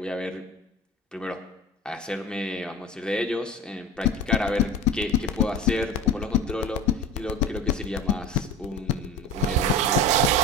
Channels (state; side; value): normal; both; correlation 0.33